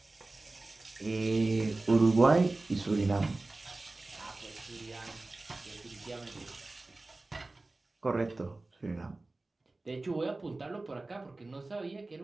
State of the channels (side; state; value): left; quieter; 3.1 dB